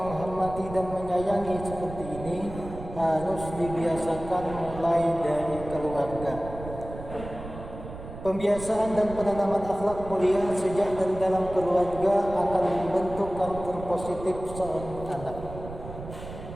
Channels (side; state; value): right; noise; rumble, 12 dB below the sound